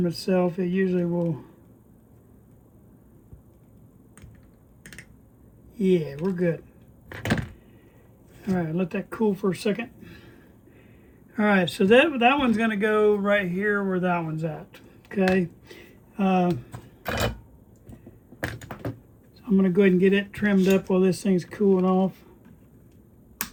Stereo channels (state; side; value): identical; both; correlation 1.00